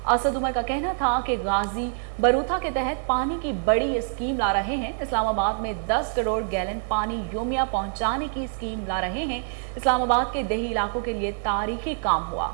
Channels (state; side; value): silent; left; 59 dB below the other